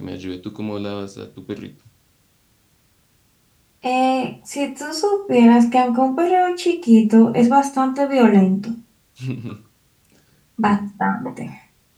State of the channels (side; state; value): both; identical; correlation 1.00